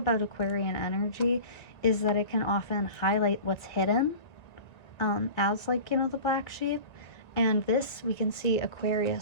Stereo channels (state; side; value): late; right; 1.7 ms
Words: Aquarian energy is that it can often highlight what's hidden, as like, you know, the black sheep. And this, we can see